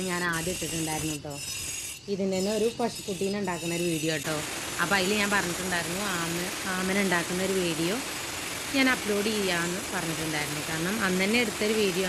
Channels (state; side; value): identical; both; correlation 1.00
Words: ഞാൻ ആദ്യം ഇട്ടിട്ടുണ്ടായിരുന്നു കേട്ടോ. ഇതിൻ്റെ തന്നെ ഒരു പശുക്കുട്ടീനെ ഉണ്ടാക്കുന്ന ഒരു വീഡിയോ കേട്ടോ. അപ്പോൾ അതിൽ ഞാൻ പറഞ്ഞിട്ടുണ്ടായിരുന്നു ആമന ഉണ്ടാക്കുന്ന ഒരു വീഡിയോ ഞാൻ അപ്ലോഡ് ചെയ്യാമെന്ന് പറഞ്ഞിട്ടുണ്ടായിരുന്നു. കാരണം അന്ന് തന്നെ എടുത്തൊരു വീഡിയോ